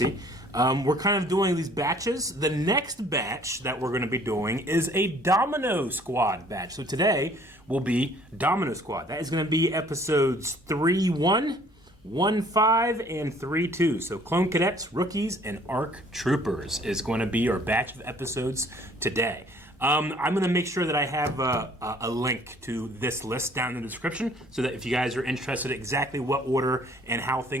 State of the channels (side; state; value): both; normal; correlation 0.57